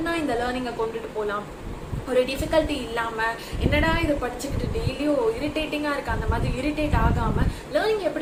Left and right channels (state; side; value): identical; both; correlation 1.00